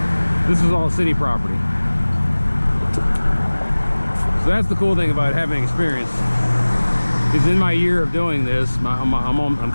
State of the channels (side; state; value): both; inverted; correlation -1.00